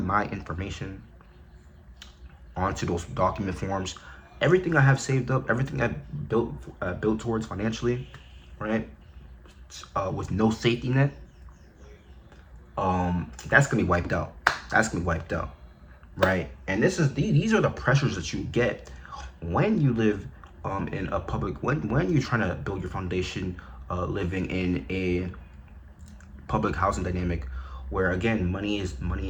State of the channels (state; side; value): identical; both; correlation 1.00